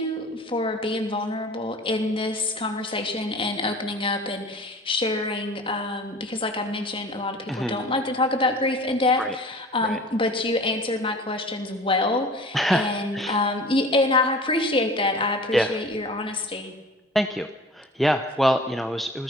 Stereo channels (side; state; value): both; normal; correlation 0.42